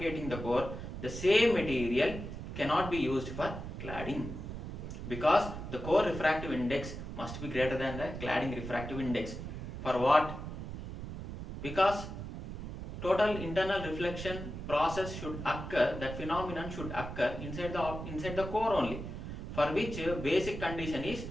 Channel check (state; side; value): noise; right; rumble, 8 dB below the sound